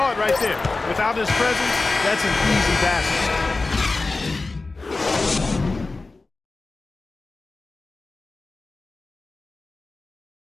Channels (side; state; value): right; quieter; 3.5 dB